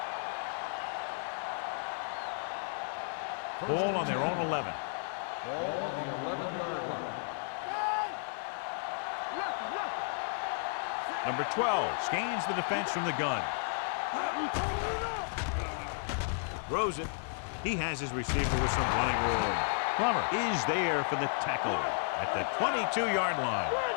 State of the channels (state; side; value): silent; right; 56 dB below the other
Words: Ball on their own 11. Ball on the 11-yard line. Number 12 scans the defense from the gun. Throws it. He has his receiver with some running room. Plummer is there for the tackle at the 22-yard line.